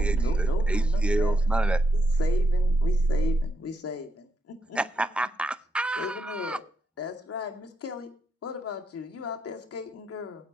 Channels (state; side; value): normal; both; correlation 0.81